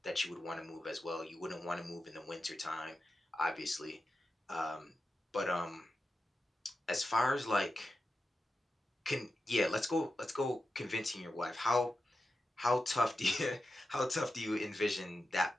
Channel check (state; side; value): normal; both; correlation 0.90